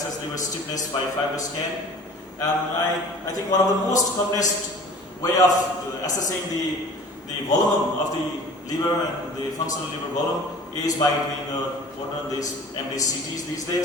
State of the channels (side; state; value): both; normal; correlation 0.45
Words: liver stiffness by FibroScan. I think one of the most commonest way of assessing the volume of the liver and the functional liver volume is by doing what are these MDCTs these